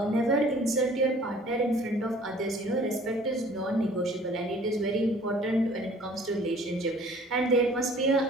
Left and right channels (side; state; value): both; normal; correlation 0.52